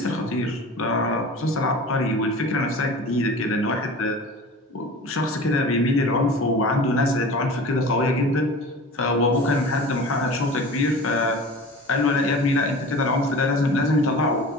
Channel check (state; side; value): normal; both; correlation 0.37